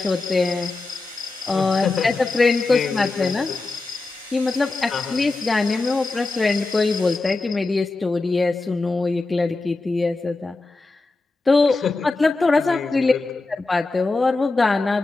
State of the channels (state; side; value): quieter; right; 3.5 dB